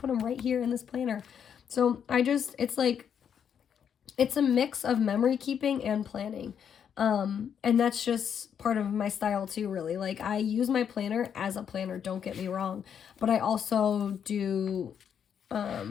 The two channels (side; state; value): right; quieter; 8.1 dB